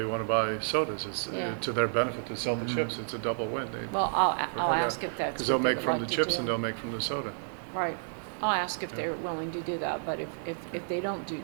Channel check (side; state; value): left; silent; digital silence